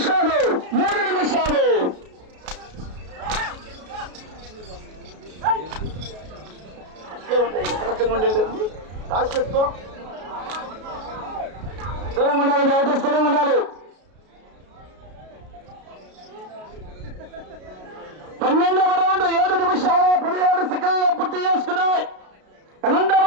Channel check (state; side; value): late; left; 33 ms